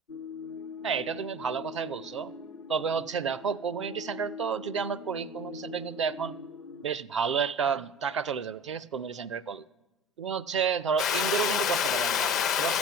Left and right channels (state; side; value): normal; both; correlation 0.38